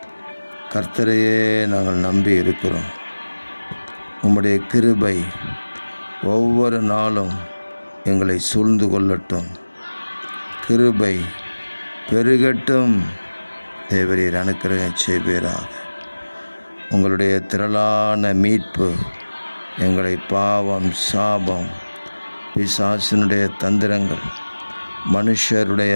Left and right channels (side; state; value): both; inverted; correlation -1.00